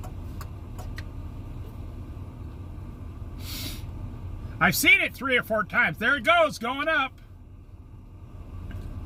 I've seen it 3 or 4 times. There it goes, going up.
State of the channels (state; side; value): identical; both; correlation 1.00